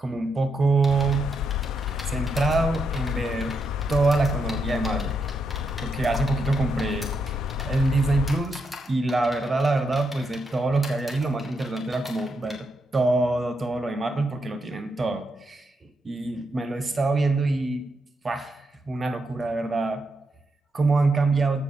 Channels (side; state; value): both; normal; correlation 0.81